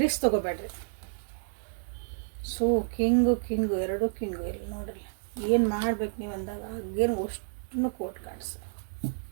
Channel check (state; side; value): silent; left; digital silence